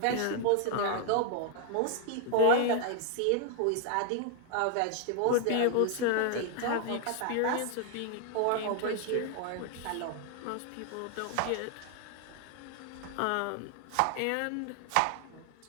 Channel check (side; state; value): both; different; correlation 0.00